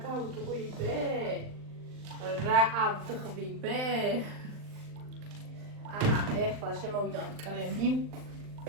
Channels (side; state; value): left; late; 39 ms